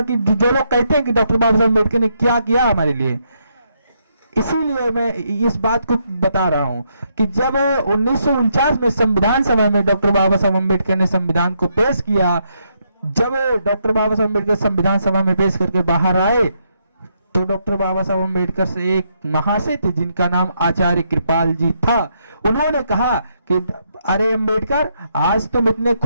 कि जो लोग कहते हैं कि डॉक्टर बाबा साहब अम्बेडकर ने क्या किया हमारे लिए, इसीलिए मैं इस बात को बता रहा हूं कि जब 1949 में संविधान सभा में डॉक्टर बाबा साहब अम्बेडकर ने संविधान को पेश किया, जब डॉक्टर बाबा साहब अम्बेडकर संविधान सभा में पेश करके बाहर आए, तो डॉक्टर बाबा साहब अम्बेडकर से एक महाशय थे जिनका नाम आचार्य कृपाल जी था। उन्होंने कहा कि अरे अम्बेडकर, आज तुम इतने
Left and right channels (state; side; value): inverted; both; correlation -0.77